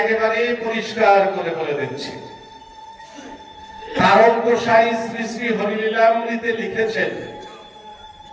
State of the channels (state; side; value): identical; both; correlation 1.00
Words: পরিষ্কার করে বলে দিচ্ছি। তারক গোসাই শ্রী শ্রী হরিলীলামৃতে লিখেছেন,